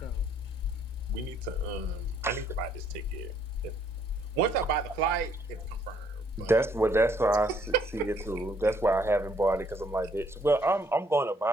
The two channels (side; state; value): both; normal; correlation 0.66